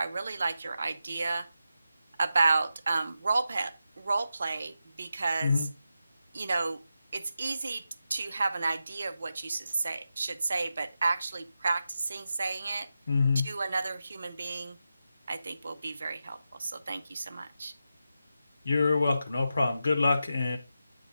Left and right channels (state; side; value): inverted; both; correlation -0.89